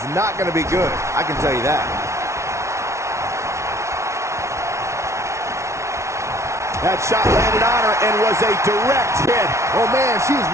not going to be good. I can tell you that. That shot landed on her and was a direct hit. Oh, man, she's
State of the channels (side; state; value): left; late; 0.14 ms